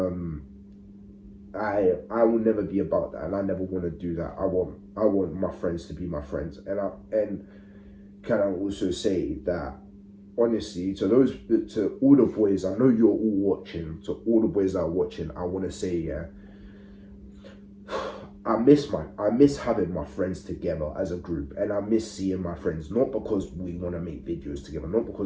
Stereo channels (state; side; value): identical; both; correlation 1.00